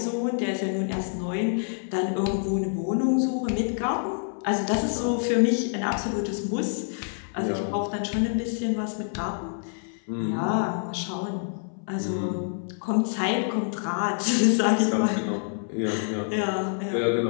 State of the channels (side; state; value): right; silent; 60 dB below the other